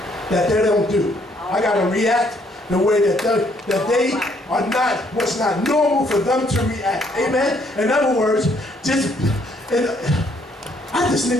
that they don't do. I got to react the way that they are not, what's not normal for them to react. Amen. In other words, I just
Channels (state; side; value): normal; both; correlation 0.67